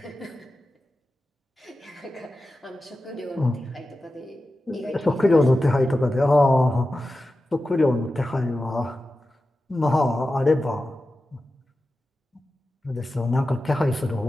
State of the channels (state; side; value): normal; both; correlation 0.93